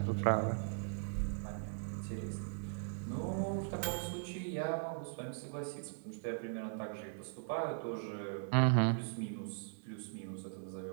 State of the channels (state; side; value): silent; left; 51 dB below the other